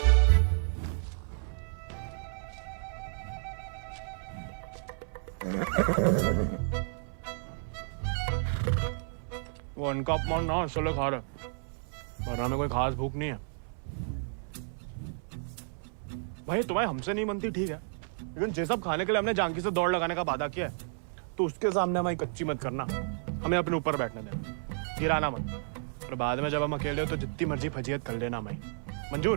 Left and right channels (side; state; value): left; silent; 57 dB below the other